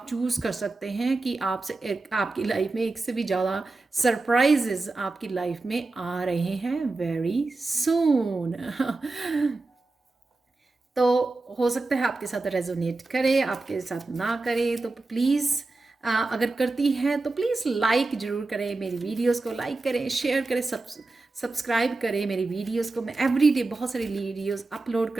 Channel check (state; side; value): quieter; left; 3.4 dB